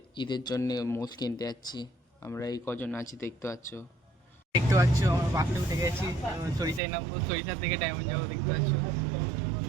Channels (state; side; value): drops out; left; at 6.8 s